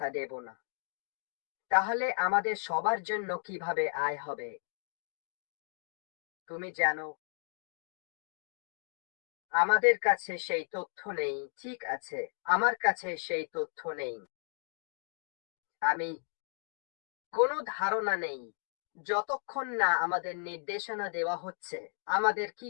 দেব না? তাহলে আমাদের সবার জন্য কিভাবে আয় হবে? তুমি জানো, আমাদের কাছে সেই তথ্য নেই। ঠিক আছে, আমার কাছে সেই তথ্য নেই। আমি কোনো ধারণা নেই। যতক্ষণ না আমাদের নির্দেশনা দেওয়া হচ্ছে আমাদের কি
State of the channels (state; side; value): silent; right; 55 dB below the other